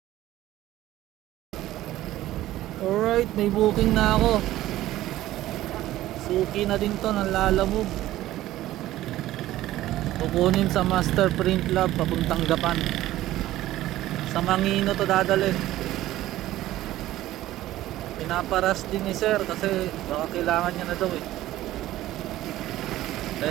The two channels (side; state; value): left; quieter; 15.0 dB